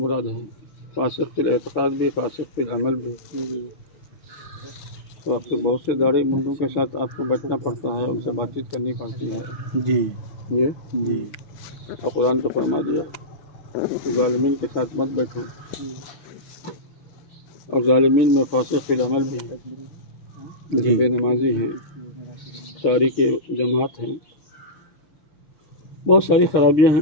ہیں، فاسق فی الاعتقاد بھی، فاسق فی العمل بھی۔ تو آپ کو بہت سے داڑھی منڈوں کے ساتھ آپ کو بیٹھنا پڑتا ہے، ان سے بات چیت کرنی پڑتی ہے۔ جی جی اور قرآن تو فرما دیا کہ ظالمین کے ساتھ مت بیٹھو، اور ظالمین میں فاسق فی العمل بھی ہے، جو بے نمازی ہیں، تاریک جماعت ہیں، بہت ساری خرابیاں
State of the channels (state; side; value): late; right; 6.1 ms